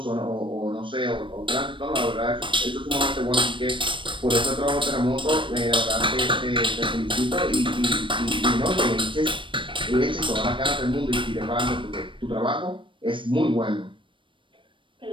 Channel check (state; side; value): late; left; 0.24 ms